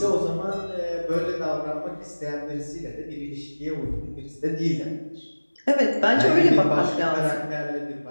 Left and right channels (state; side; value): inverted; both; correlation -1.00